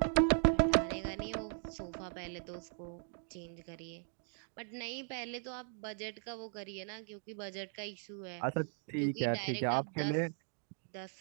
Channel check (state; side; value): silent; left; 52 dB below the other